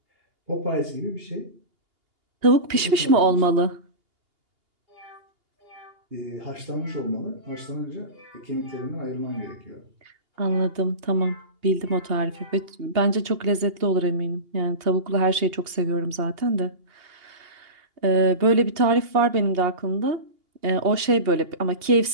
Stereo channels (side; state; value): left; late; 2.8 ms